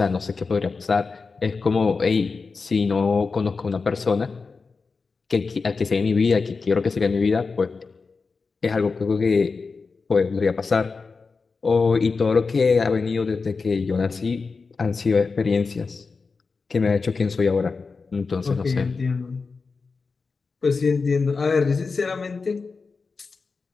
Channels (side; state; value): right; quieter; 4.5 dB